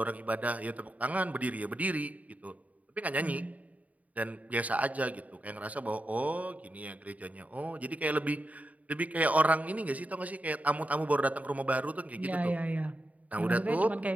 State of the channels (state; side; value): late; left; 0.071 ms